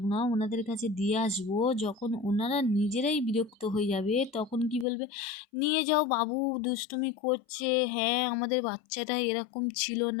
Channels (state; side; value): drops out; right; at 4.9 s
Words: না, ওনাদের কাছে দিয়ে আসবো, যখন ওনারা নিজেরাই বিরক্ত হয়ে যাবে, তখন কি বলবে, নিয়ে যাও বাবু, দুষ্টুমি করছে। হ্যাঁ, আমাদের বাচ্চাটা এরকম ছিল